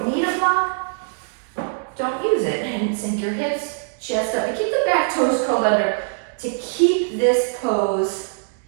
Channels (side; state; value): left; silent; digital silence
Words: need a block, don't use it. And sink your hips, chest up. And keep the back toes curled under to keep this pose